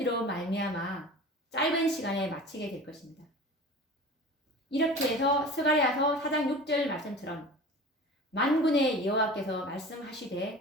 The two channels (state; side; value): normal; both; correlation 0.37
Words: 말미암아 짧은 시간에 마치게 될 것입니다. 이렇게 해서 스가랴서 4장 6절 말씀처럼 만군의 여호와께서